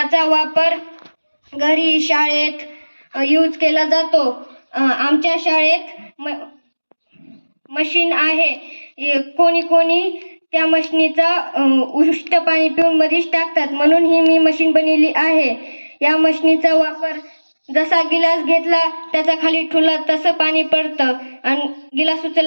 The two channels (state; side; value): inverted; both; correlation -1.00